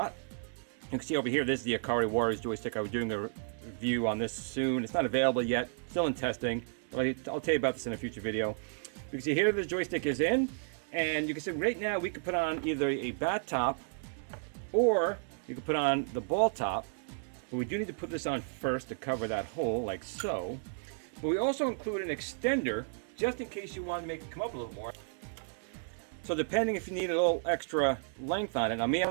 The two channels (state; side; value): silent; left; digital silence